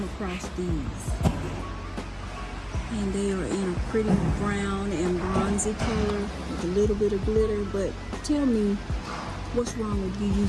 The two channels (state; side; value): identical; both; correlation 1.00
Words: across these and they are in a pretty brown and bronzy color with a little bit of glitter. But tell me, what's wrong with you